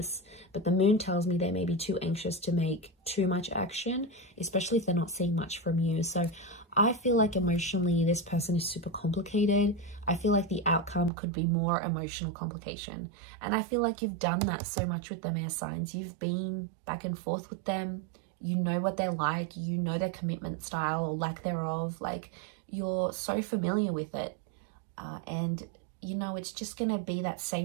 But the Moon tells me they may be too anxious to make too much action, especially if they're not seeing much from you. So I feel like emotionally, this person is super complicated. I feel like the outcome could be more emotional complication. And I feel like you've done that so much with them, air signs. You've been back and forth with them. You know what they're like. You know their commitment style or lack thereof. Like, you're so familiar with it. And, you know, it's just going to be that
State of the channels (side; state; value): left; drops out; at 11.1 s